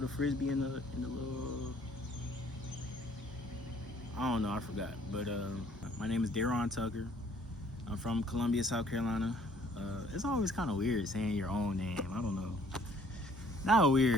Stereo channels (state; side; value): normal; both; correlation 0.59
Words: frisbee in the little? I don't know. I forgot. But my name is Daron Tucker. I'm from Columbia, South Carolina. It's always kind of weird saying your own name. I don't know. Not